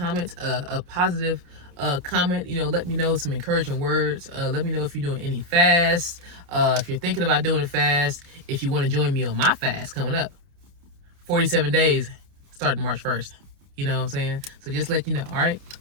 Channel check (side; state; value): left; late; 29 ms